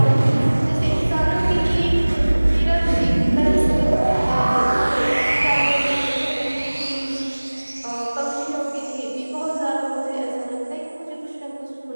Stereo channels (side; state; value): both; inverted; correlation -1.00